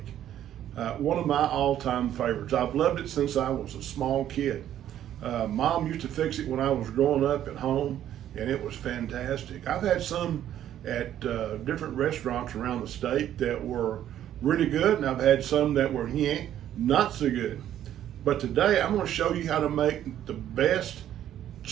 One of my all-time favorites. I've loved it since I was a small kid. Mom used to fix it when I was growing up at home, and it was fantastic. I've had some at different restaurants around the state that were really good, and I've had some that were not so good. But today I'm going to show you how to make the best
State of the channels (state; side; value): quieter; left; 11.3 dB